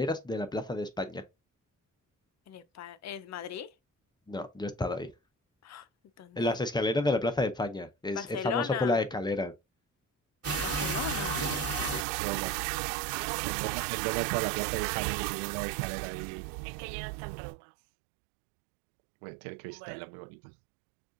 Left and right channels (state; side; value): drops out; left; at 12.1 s